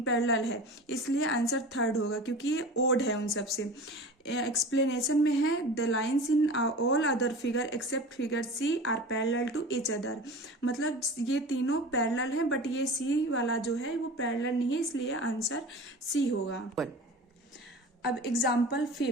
पैरेलल है। इसलिए आंसर थर्ड होगा क्योंकि ये ओड है उन सबसे। एक्सप्लेनेशन में है the lines in all other figure except figure C are parallel to each other. मतलब ये तीनों पैरेलल हैं बट ये सी वाला जो है वो पैरेलल नहीं है, इसलिए आंसर सी होगा। अब example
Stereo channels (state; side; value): normal; both; correlation 0.35